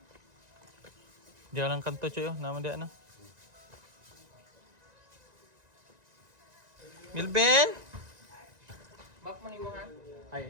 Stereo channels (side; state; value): left; late; 1.9 ms